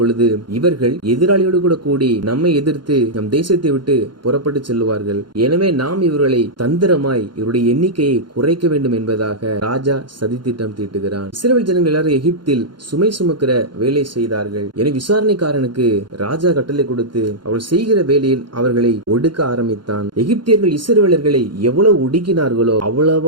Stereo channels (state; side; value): late; left; 0.71 ms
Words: இவர்கள் எதிராளியோடு கூட கூடி நம்மை எதிர்த்து நம் தேசத்தை விட்டு புறப்பட்டு செல்லுவார்கள். எனவே நாம் இவர்களை தந்திரமாய் இவருடைய எண்ணிக்கையை குறைக்க வேண்டும் என்பதாக ராஜா சதித்திட்டம் தீட்டுகிறான். இஸ்ரவேல் ஜனங்கள் எல்லாரும் எகிப்தில் சுமை சுமக்கிற வேலை செய்தார்கள். என விசாரணைக்காரனுக்கு ராஜா கட்டளை கொடுத்து அவள் செய்கிற வேலையில் அவர்களை ஒடுக்க ஆரம்பித்தான். எகிப்தியர்கள் இஸ்ரவேலர்களை எவ்வளவு ஒடுக்கினார்களோ